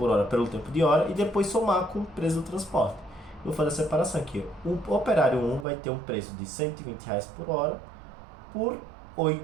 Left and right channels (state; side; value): drops out; left; at 5.7 s